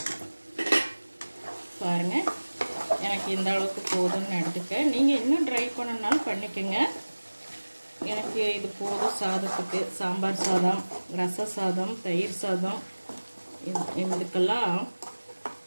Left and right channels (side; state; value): both; inverted; correlation -1.00